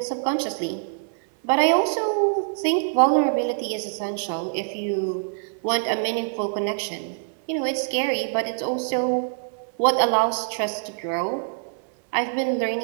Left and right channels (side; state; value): left; silent; 59 dB below the other